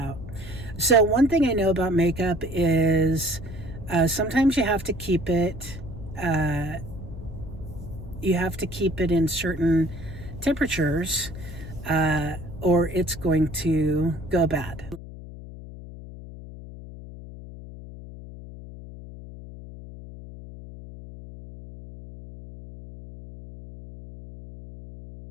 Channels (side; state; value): left; noise; hum, 14 dB below the sound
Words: So one thing I know about makeup is sometimes you have to keep it in certain temperatures or it's going to go bad.